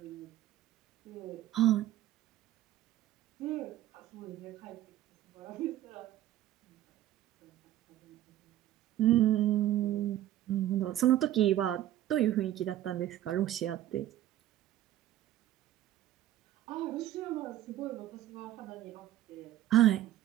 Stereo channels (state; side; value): quieter; left; 13.1 dB